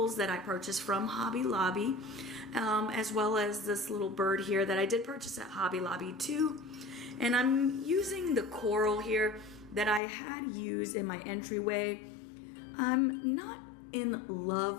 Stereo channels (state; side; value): drops out; right; at 10.0 s